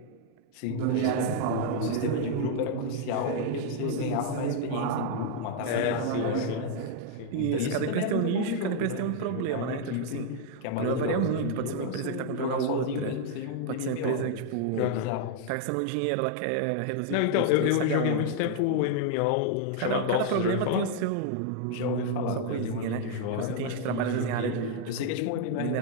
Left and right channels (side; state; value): both; different; correlation 0.00